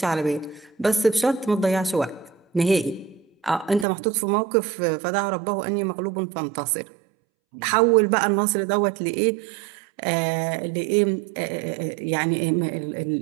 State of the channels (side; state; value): left; drops out; at 3.9 s